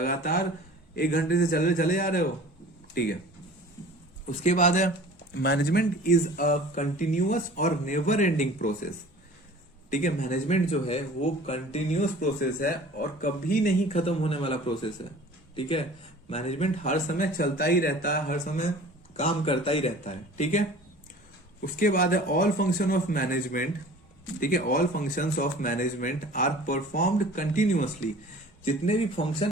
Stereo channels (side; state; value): both; normal; correlation 0.44